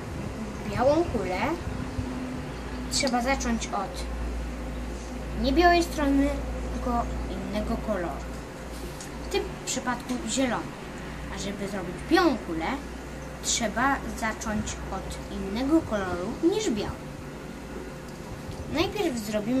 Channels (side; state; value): both; identical; correlation 1.00